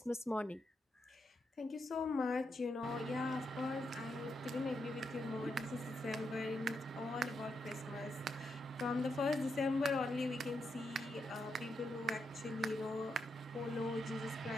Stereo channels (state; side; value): normal; both; correlation 0.82